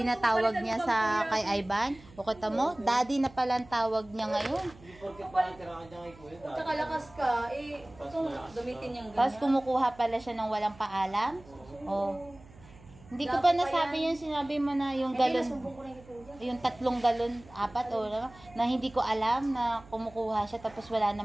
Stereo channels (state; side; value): noise; right; hum, 22 dB below the sound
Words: na tawag niya sa kay Ivan. O kita mo, daddy na pala ang tawag niya ngayon. Tsaka lakas ka, gamitin niyang ganyan. Tapos kumukuha pala siya ng walang paalam. O, hindi ko pa nasabi yung sinabi mo na yung galon. Yung 3 galon, 4 o na hindi ko alam na kumukuha siya tapos wala